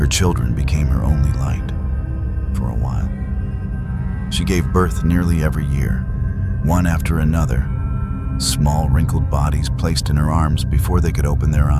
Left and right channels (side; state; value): both; identical; correlation 1.00